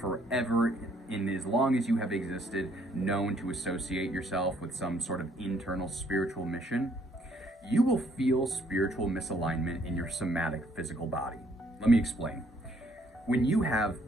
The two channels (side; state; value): both; normal; correlation 0.65